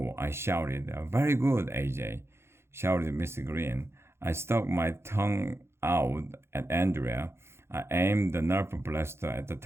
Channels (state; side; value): late; left; 0.12 ms